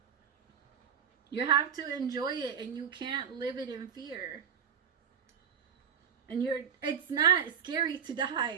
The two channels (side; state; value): left; quieter; 7.9 dB